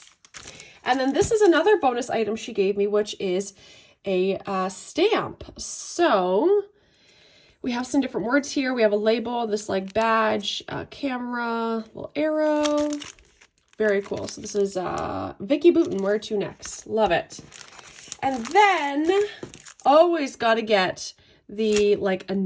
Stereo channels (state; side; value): identical; both; correlation 1.00